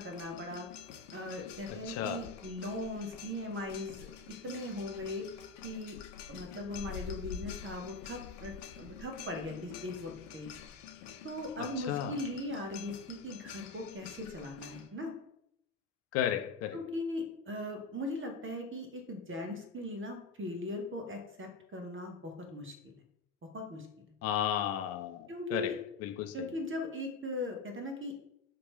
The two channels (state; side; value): quieter; right; 3.9 dB